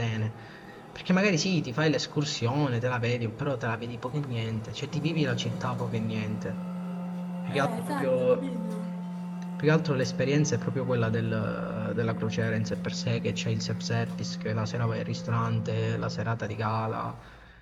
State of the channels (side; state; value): both; identical; correlation 1.00